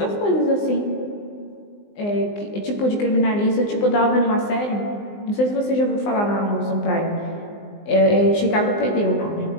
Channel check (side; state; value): right; late; 19 ms